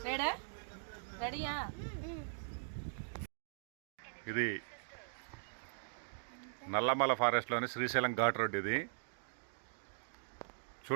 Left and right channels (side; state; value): left; silent; digital silence